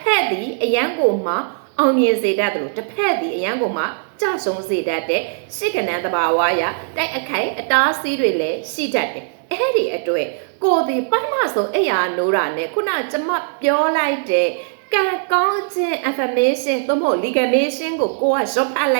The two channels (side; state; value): left; silent; digital silence